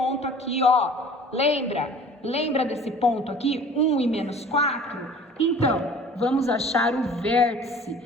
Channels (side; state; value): both; normal; correlation 0.46